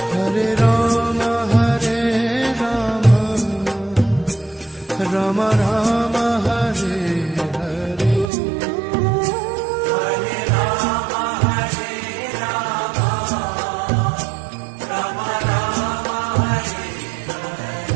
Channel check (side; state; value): left; drops out; at 8.3 s